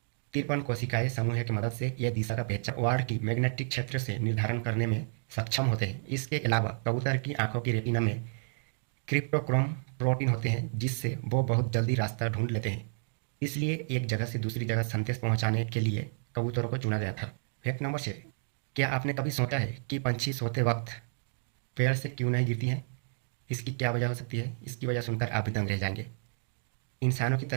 53 कोशिकाएं समूह की मदद से यह दिशा का पहचान वार्ड की मैग्नेटिक क्षेत्र से निर्धारण करने में सक्षम होते हैं। इसके अलावा कबूतर की आंखों की रेटिना में क्रिप्टोक्रोम प्रोटीन होते हैं, जिससे वो बहुत जल्दी रास्ता ढूंढ लेते हैं। इसलिए एक जगह से दूसरी जगह संदेश पहुंचाने के लिए कबूतरों को चुना गया था। Fact number 6। क्या आपने कभी सोचा है कि पंछी सोते वक्त पेड़ से क्यों नहीं गिरती हैं? इसकी क्या वजह हो सकती है? इसकी वजह सुनकर आप भी दंग रह जाएंगे। इंसानों की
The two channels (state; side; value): silent; left; digital silence